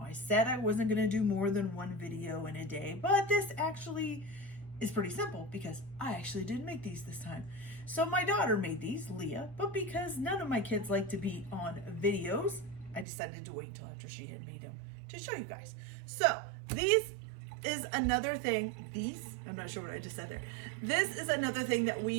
said I wasn't going to do more than one video in a day, but this actually is pretty simple because I actually didn't make these this time. So my daughter made these, Leah, but because none of my kids like to be on videos, I decided to wait until after she had made them to show you guys. So these is another thing, I'm not sure what I just said there. This is another thing that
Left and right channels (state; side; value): drops out; left; at 13.1 s